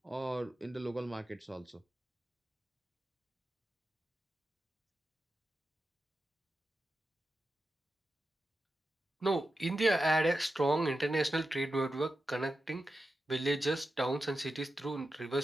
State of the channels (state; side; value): normal; both; correlation 0.91